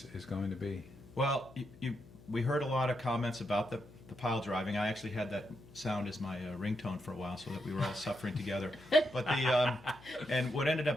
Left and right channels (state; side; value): noise; left; hum, 22 dB below the sound